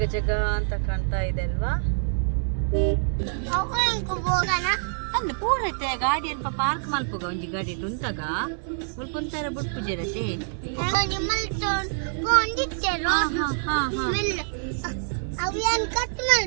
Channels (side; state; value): left; silent; digital silence